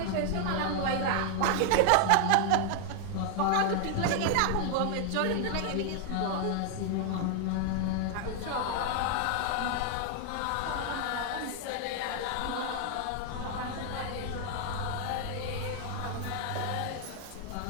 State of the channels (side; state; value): both; different; correlation 0.00